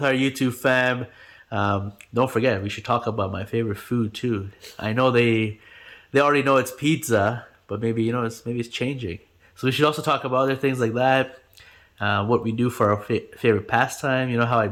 our YouTube fam. Don't forget, we should talk about my favorite food too. I know they already know it's pizza, but maybe it's changing. So we should also talk about other things like that. What we do for our favorite pastime. How I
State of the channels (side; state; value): both; identical; correlation 1.00